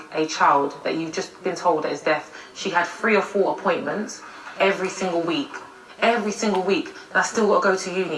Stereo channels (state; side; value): identical; both; correlation 1.00